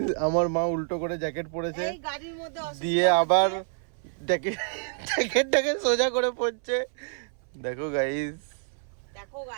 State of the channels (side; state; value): left; silent; 60 dB below the other